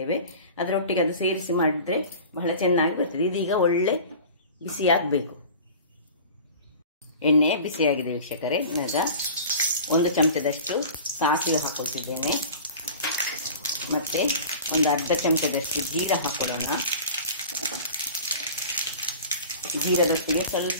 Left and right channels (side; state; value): both; inverted; correlation -0.39